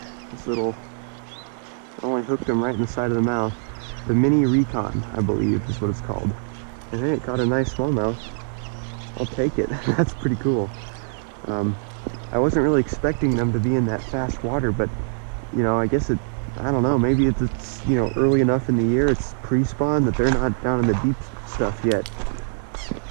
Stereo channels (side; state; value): left; silent; 63 dB below the other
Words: This little, I only hooked him right in the side of the mouth. The Mini Recon, I believe, is what it's called. And hey, it caught a nice smallmouth. I'll take it. That's pretty cool. I wasn't really expecting them to be in that fast water, but I guess I don't know, maybe it's early enough in the year, it's pre-spawn, that they're not down in the deep stuff yet.